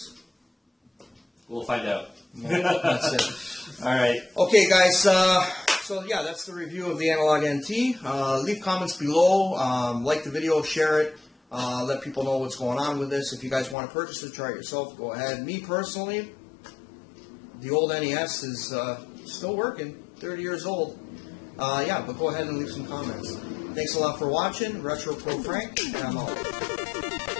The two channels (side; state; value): right; drops out; at 13.8 s